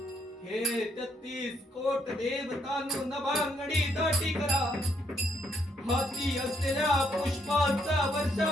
हे 33 कोट देवतांनो नभांगडी दाटी करा हाती असलेल्या पुष्पांचा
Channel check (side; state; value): both; normal; correlation 0.73